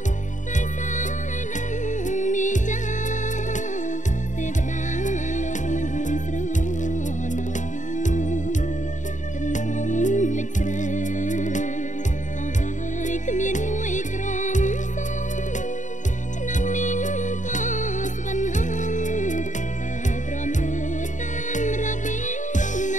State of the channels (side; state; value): right; late; 0.36 ms